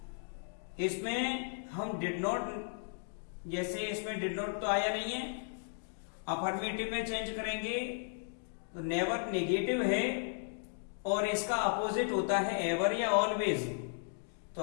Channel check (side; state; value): right; silent; digital silence